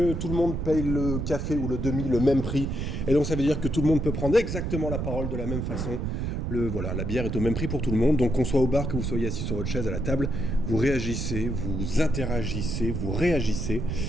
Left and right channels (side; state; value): right; noise; rumble, 2 dB below the sound